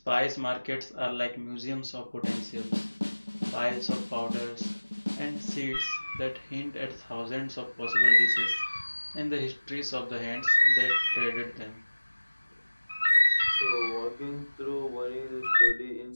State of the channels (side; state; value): both; inverted; correlation -1.00